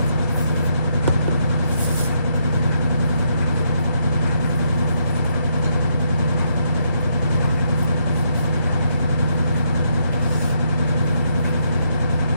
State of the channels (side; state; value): both; inverted; correlation -0.76